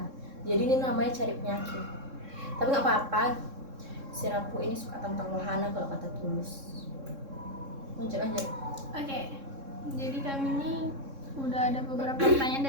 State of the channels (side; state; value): left; late; 3.7 ms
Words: Jadi ini namanya cari penyakit. Tapi nggak apa-apa. Si Rapu ini suka tentang wahana kalau kata Tulus. Lanjut. Oke, jadi kami ini udah ada beberapa pertanyaan